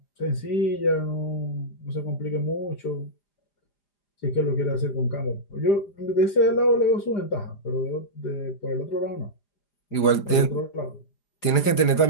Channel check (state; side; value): late; right; 4.9 ms